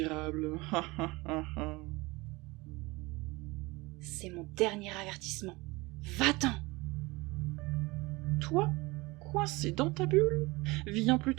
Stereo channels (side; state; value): left; quieter; 23.0 dB